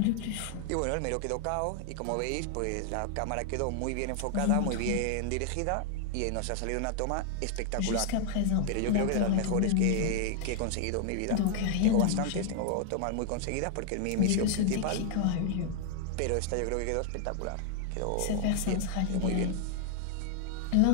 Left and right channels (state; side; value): different; both; correlation 0.00